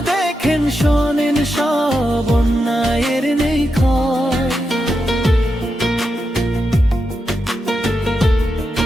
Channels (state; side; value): normal; both; correlation 0.87